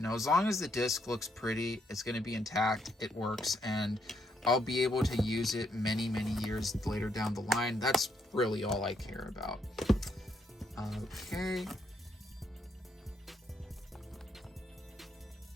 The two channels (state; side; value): normal; both; correlation 0.75